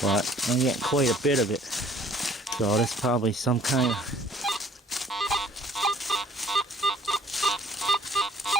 But I'm getting quite a bit of it. So that's probably some kind of...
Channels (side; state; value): both; normal; correlation 0.55